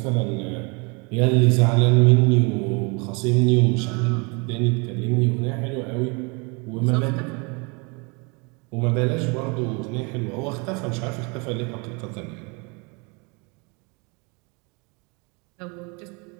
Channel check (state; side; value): quieter; left; 30.9 dB